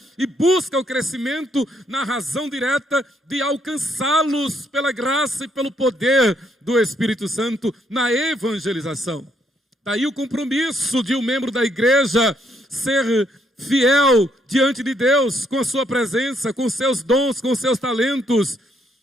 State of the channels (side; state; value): both; normal; correlation 0.72